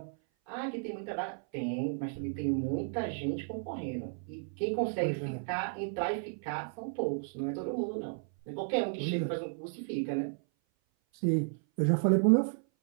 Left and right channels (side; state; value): left; silent; 56 dB below the other